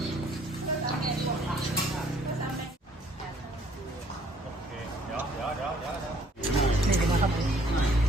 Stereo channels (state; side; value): normal; both; correlation 0.61